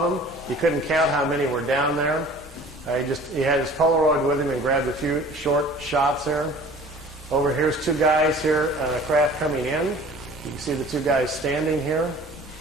them. He couldn't count how many were down there. He had his Polaroid with him and grabbed a few short shots there. Over here's 2 guys here on a craft coming in. You can see the two guys standing here.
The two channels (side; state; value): both; normal; correlation 0.47